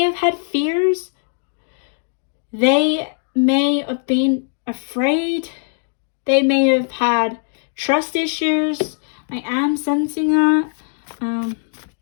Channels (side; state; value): right; silent; 62 dB below the other